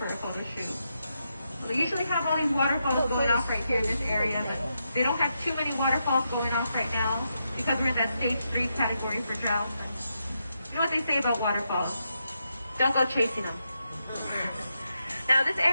a photo shoot. We usually have all these waterfalls going off right here in this area, but they don't have too many waterfalls going off right now because we're in that stage 3 category for drought. You know what they say about waterfalls? Don't go chasing them. Now this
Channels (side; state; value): both; inverted; correlation -0.84